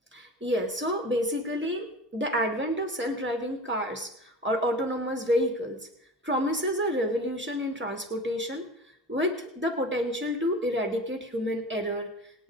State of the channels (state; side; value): normal; both; correlation 0.35